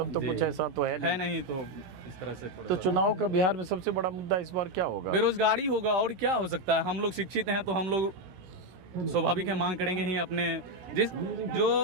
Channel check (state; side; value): late; left; 17 ms